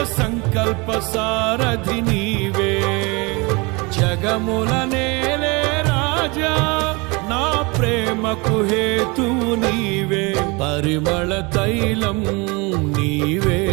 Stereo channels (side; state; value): left; quieter; 27.5 dB